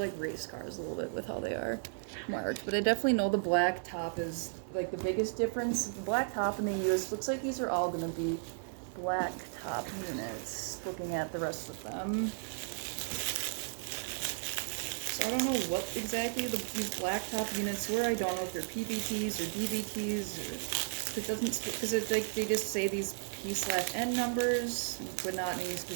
race cars a little bit with how they are. marked, but I definitely know the black top is like the biggest difference. The black top and the US looks like these are all gonna be black top units, looking at the rest of them. So I don't know what exactly these black top units were. I don't know if they're PBTs or DVTs or it doesn't, because it's like they just say these P/N numbers, but not any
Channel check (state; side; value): silent; left; digital silence